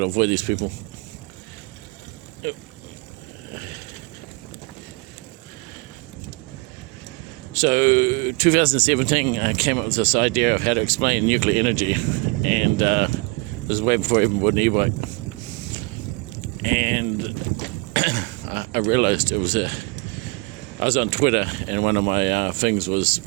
avoid these people. So 2017 I came up with this idea of how to explain nuclear energy, and this was way before I even bought an e-bike. And I realized I was on Twitter, and one of my things was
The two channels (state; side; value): quieter; left; 26.6 dB